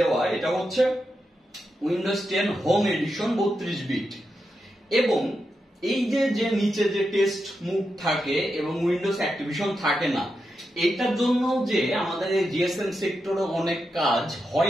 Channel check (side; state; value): both; normal; correlation 0.87